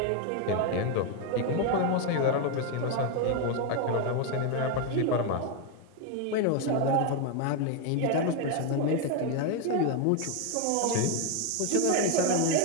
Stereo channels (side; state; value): both; different; correlation 0.01